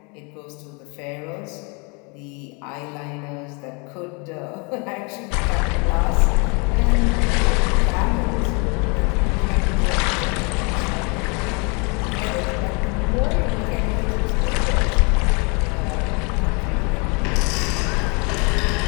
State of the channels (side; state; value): right; quieter; 32.1 dB